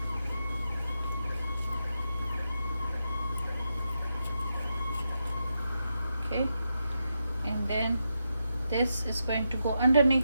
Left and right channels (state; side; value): inverted; both; correlation -0.85